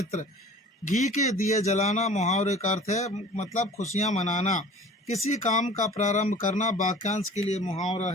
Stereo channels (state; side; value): normal; both; correlation 0.44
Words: घी के दिए जलाना मुहावरे का अर्थ है मतलब खुशियां मनाना। किसी काम का प्रारंभ करना वाक्यांश के लिए मुहावरा